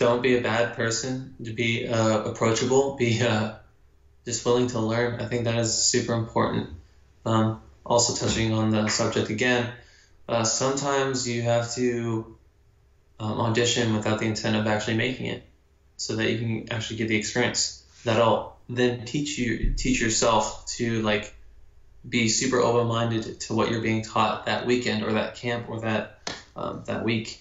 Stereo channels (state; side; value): identical; both; correlation 1.00